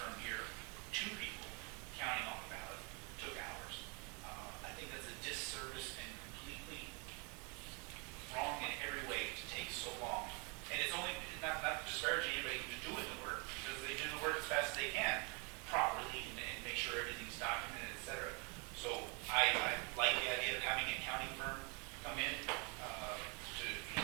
here, 2 people counting all the ballots, took hours. I think that's a disservice and completely wrong in every way to take so long. And it's only, not disparaging anybody who's doing the work, because they do the work as fast as they can, properly, and make sure everything's documented, et cetera. So I like the idea of having an accounting firm come in,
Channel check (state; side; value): quieter; left; 32.9 dB